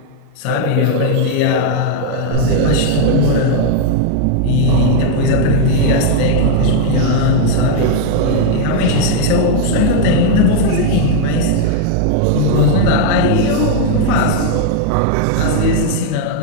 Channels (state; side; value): different; both; correlation 0.00